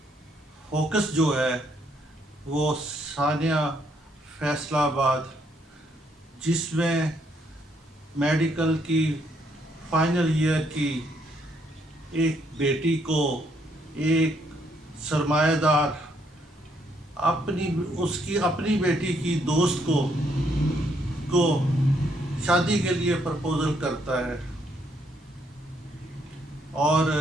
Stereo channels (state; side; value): normal; both; correlation 0.72